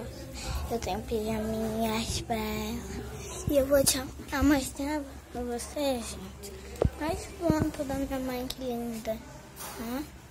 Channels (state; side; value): identical; both; correlation 1.00